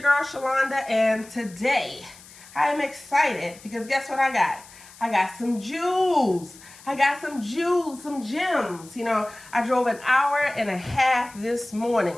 girl Shalonda, and today I am excited because guess what I got? I got some jewels. Some gems. You know, I drove an hour and a half this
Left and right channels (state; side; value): noise; left; hiss, 21 dB below the sound